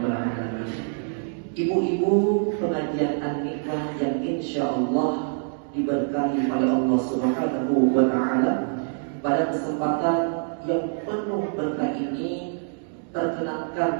alamin. Ibu-ibu pengajian An-Nikmah yang insyaallah diberkahi oleh Allah Subhanahu wa taala, pada kesempatan yang penuh berkah ini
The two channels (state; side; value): silent; left; digital silence